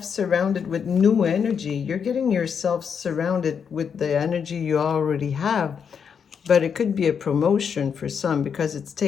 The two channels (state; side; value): quieter; right; 6.9 dB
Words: surrounded with new energy. You're getting yourself surrounded with the energy you already have. But it could be a promotion for some because it's